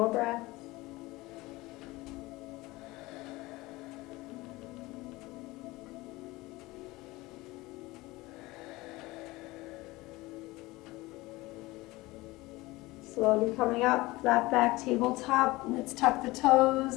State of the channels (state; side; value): quieter; right; 20.6 dB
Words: breaths. Slowly coming up, flat back, tabletop. Let's tuck the